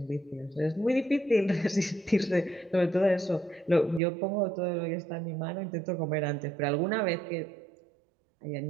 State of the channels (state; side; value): drops out; left; at 4.0 s